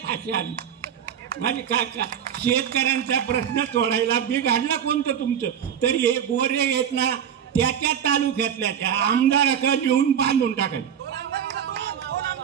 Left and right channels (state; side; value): quieter; left; 8.8 dB